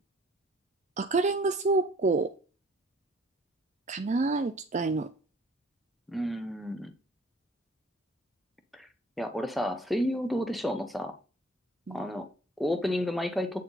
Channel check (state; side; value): normal; both; correlation 0.56